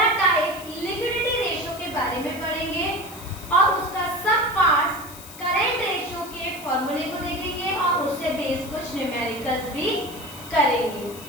टाइप लिक्विडिटी रेशियो के बारे में पढ़ेंगे और उसका सब पार्ट्स करेंट रेशियो के फॉर्मूले को देखेंगे और उससे बेस कुछ न्यूमेरिकल्स भी करेंगे।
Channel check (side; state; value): left; noise; hiss, 16 dB below the sound